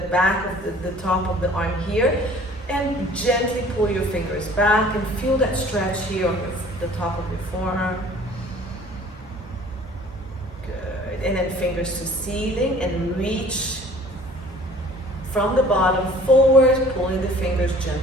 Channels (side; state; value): both; normal; correlation 0.50